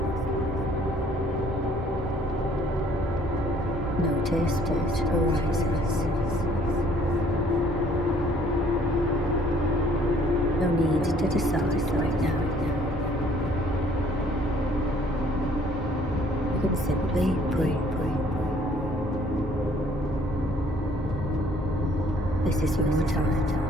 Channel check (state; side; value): normal; both; correlation 0.60